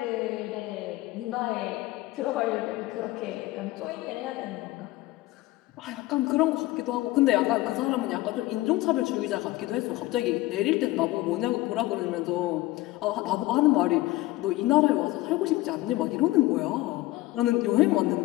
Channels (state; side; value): quieter; right; 18.5 dB